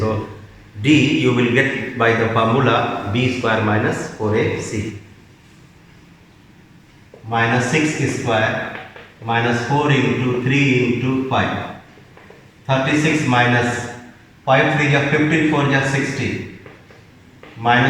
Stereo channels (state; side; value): identical; both; correlation 1.00